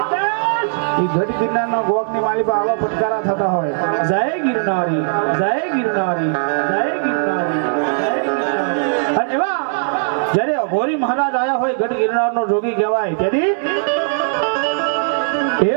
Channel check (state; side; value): silent; left; digital silence